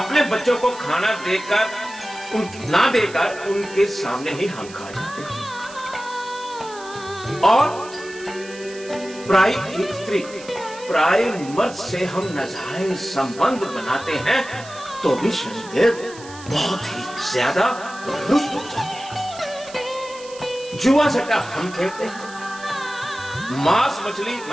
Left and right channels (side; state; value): right; noise; hiss, 18 dB below the sound